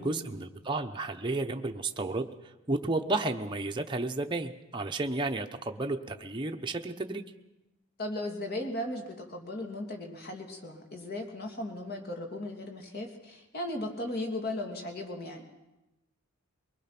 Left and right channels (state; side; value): normal; both; correlation 0.45